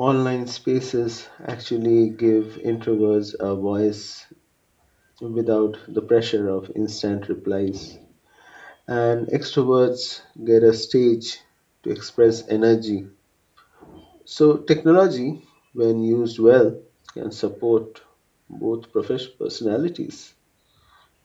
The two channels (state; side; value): identical; both; correlation 1.00